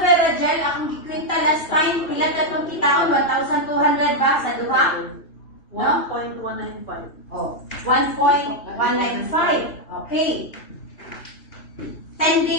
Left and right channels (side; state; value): right; late; 2.8 ms